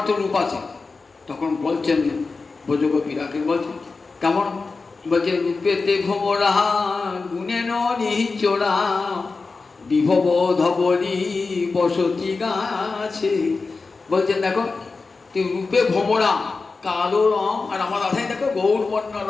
তো রূপ আছে। তখন বলছেন ব্রজগোপীরাকে, বলছেন কেমন? বলছে, রূপেতে ভোমরা গুণে নিচোরা বিভব ধবলি বসতি গাছে। বলছেন, দেখো তুই রূপে ভোমরা, কালো রং, আর আমার রাধাই দেখো গৌরবর্ণ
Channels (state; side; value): quieter; right; 4.1 dB